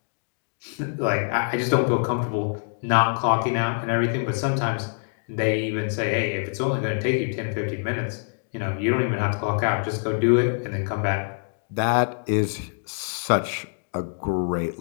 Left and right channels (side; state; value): right; silent; digital silence